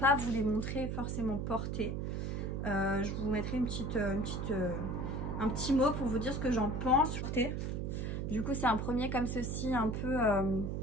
vous les montrer forcément portés. Je vous mettrai un petit mot pour vous dire ce que j'en pense. Du coup, c'est un premier comme ceci, un peu...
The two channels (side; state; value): right; noise; hum, 2 dB below the sound